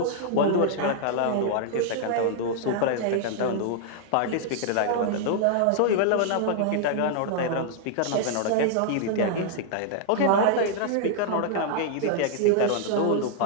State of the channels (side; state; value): both; different; correlation -0.01